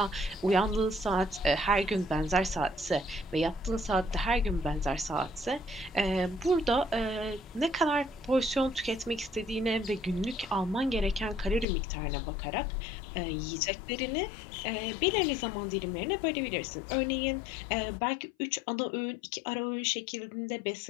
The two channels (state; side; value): drops out; right; at 11.7 s